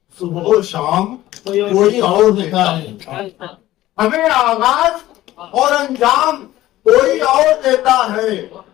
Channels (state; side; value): quieter; right; 15.3 dB